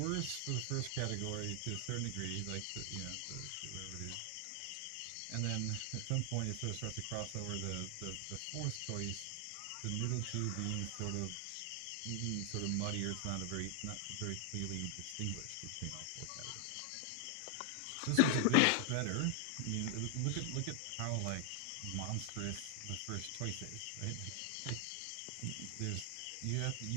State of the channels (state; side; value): different; both; correlation 0.00